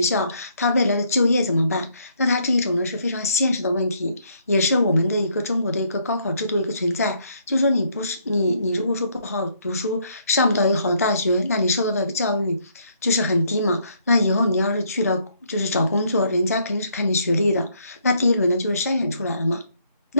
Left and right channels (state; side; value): inverted; both; correlation -0.69